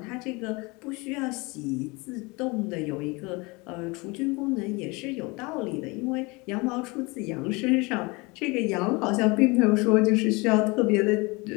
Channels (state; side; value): quieter; right; 26.1 dB